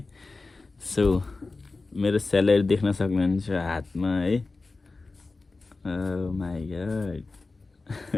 सो मेरो स्यालेरी देख्न सक्नुहुन्छ हातमा है। My God.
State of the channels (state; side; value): quieter; right; 3.7 dB